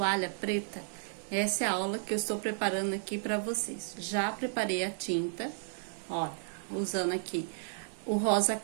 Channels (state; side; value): silent; left; digital silence